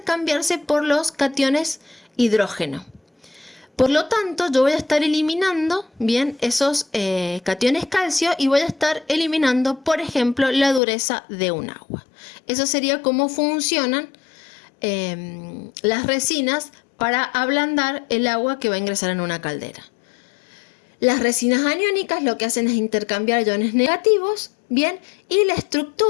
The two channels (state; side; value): drops out; right; at 10.8 s